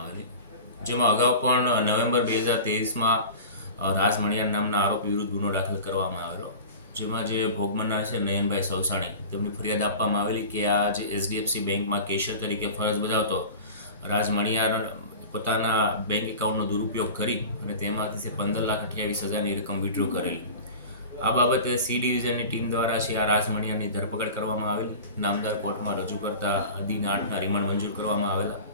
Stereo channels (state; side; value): inverted; both; correlation -0.36